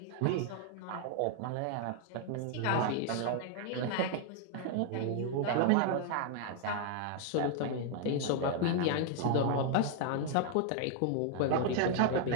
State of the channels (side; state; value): both; different; correlation 0.00